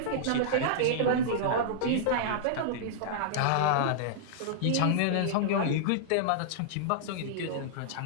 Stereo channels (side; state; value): both; different; correlation -0.02